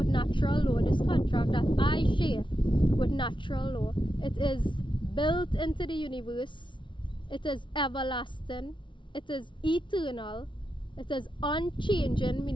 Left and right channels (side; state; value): right; late; 0.24 ms